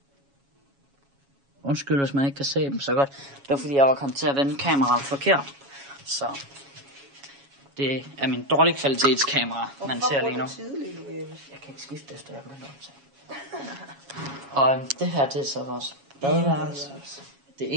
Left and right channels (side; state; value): left; late; 7.2 ms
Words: Undskyld, hvis man ikke kan se dem så godt. Det var fordi, jeg var kommet til at vende kameraet forkert. Så det er min dårlige kvalitetskamera, man ser lige nu. Jeg kan ikke skifte efter, jeg begynder at optage. Og det her, det er så vores badeværelse.